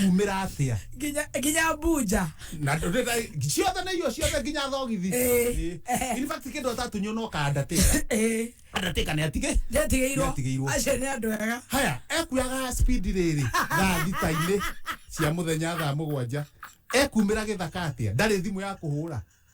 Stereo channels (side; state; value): both; identical; correlation 1.00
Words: atĩa nginya mbunja na ciothe nĩ irio ciothe nginya thogithi in fact kĩndũ atatũnywo no kandatĩka nĩ atigĩirwo acio nĩ andũ ega haya ekuyaga speed rĩrĩ thaa thita-inĩ cia mũthenya thaa mũgwanja ekumĩra gĩthaka atĩa ndarĩ thimũ ya kũhũra